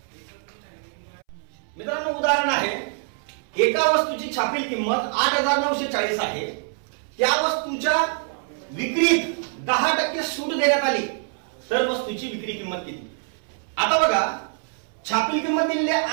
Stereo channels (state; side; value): silent; left; 62 dB below the other